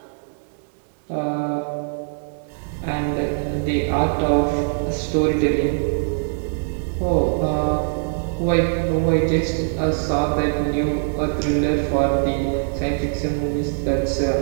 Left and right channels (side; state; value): left; silent; 64 dB below the other